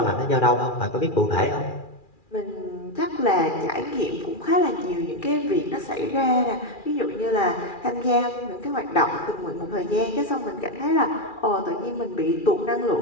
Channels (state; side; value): late; right; 2.4 ms